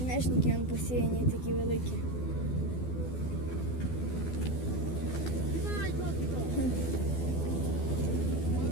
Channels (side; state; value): right; late; 12 ms